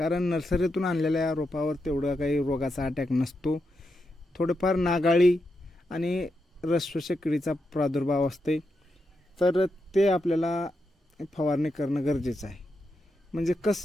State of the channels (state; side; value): normal; both; correlation 0.85